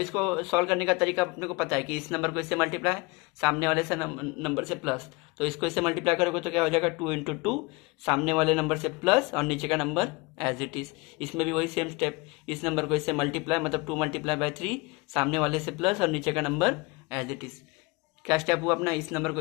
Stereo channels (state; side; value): quieter; right; 25.9 dB